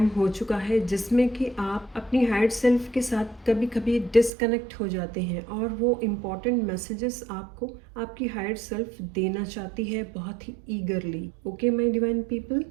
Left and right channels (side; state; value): left; drops out; at 4.3 s